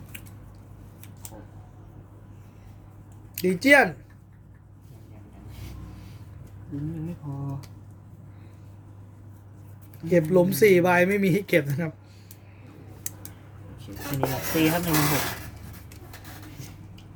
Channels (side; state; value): both; identical; correlation 1.00